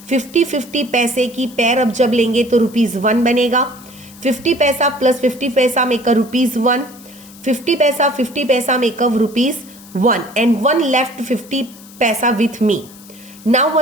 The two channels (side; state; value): left; noise; hiss, 21 dB below the sound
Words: 50-50 पैसे की पेयर. अब जब लेंगे तो रुपीज 1 बनेगा. 50 पैसा प्लस 50 पैसा मेक अ रुपीज 1. 50 पैसा make a rupees 1 and 1 left 50 paisa with me. Now